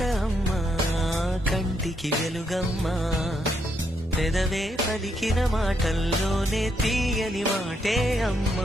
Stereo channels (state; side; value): normal; both; correlation 0.77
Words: అమ్మా, కంటికి వెలుగమ్మా. పెదవే పలికిన మాటల్లోనే తీయని మాటే